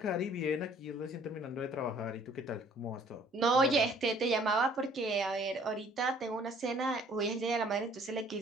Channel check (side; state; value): both; normal; correlation 0.58